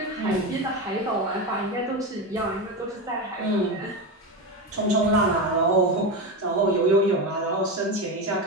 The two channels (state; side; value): normal; both; correlation 0.17